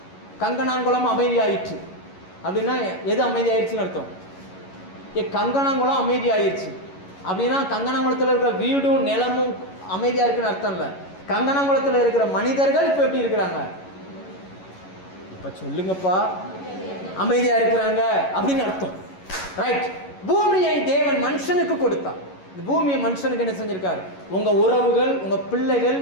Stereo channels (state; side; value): late; right; 11 ms